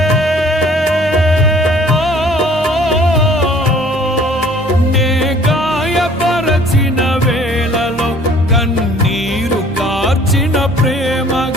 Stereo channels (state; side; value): normal; both; correlation 0.54